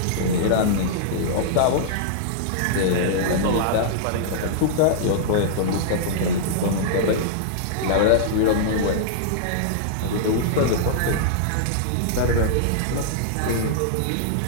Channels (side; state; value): both; different; correlation -0.02